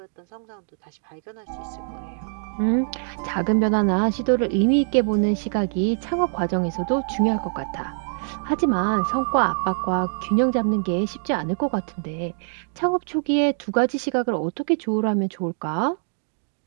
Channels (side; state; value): left; silent; 63 dB below the other